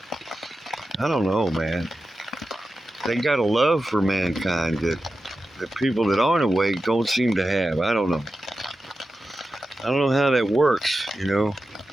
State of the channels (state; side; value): normal; both; correlation 0.92